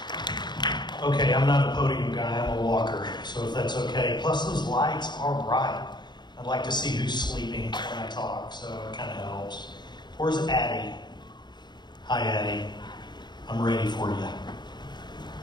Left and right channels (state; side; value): late; right; 0.21 ms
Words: Okay, I'm not a podium guy, I'm a walker, so if that's okay. Plus those lights are bright. I'd like to see who's sleeping when I talk, so it kind of helps. Where's Addie? Hi, Addie. I'm ready for you.